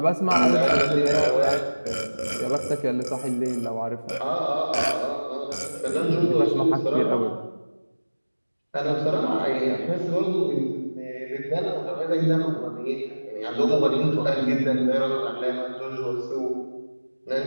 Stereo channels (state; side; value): inverted; both; correlation -1.00